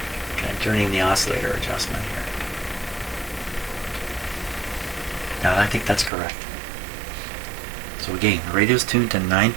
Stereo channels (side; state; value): left; drops out; at 6.1 s